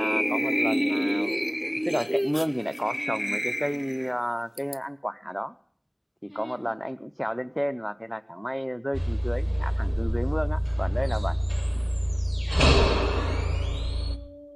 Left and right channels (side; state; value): both; identical; correlation 1.00